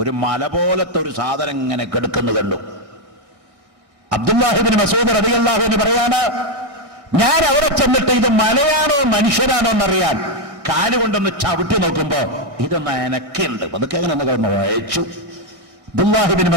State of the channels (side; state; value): left; late; 1.7 ms